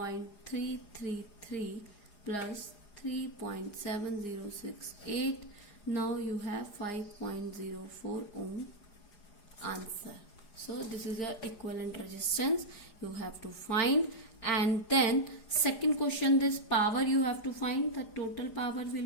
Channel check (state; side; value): late; right; 4.9 ms